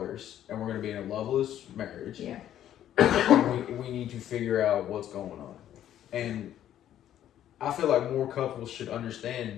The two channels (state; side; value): quieter; right; 11.3 dB